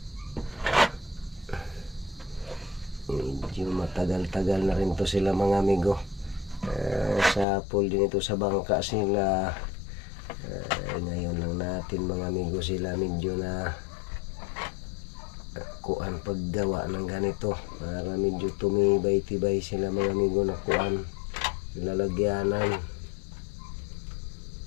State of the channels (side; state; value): right; drops out; at 7.5 s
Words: medyo matagal-tagal na rin to sila mga amigo. Sa pool din ito sa bangka sila. Ngayon lang natin mga amigo sila medyo na kuan paggawa ng ganito para medyo tumibay-tibay sila mga amigo na kuan lalagyanan.